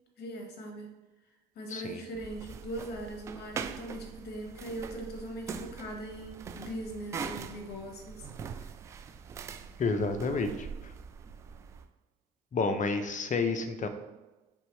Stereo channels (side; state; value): both; normal; correlation 0.45